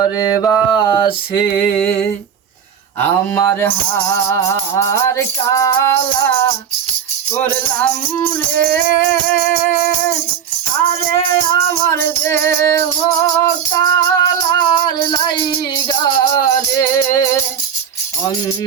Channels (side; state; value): left; quieter; 8.2 dB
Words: বাসে। আমার হার কালা করলাম রে, আরে আমার দেহ কালার লাইগা রে,